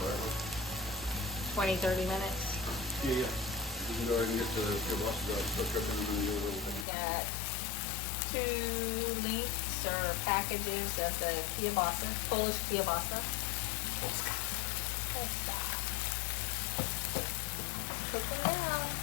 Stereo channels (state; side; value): drops out; right; at 6.9 s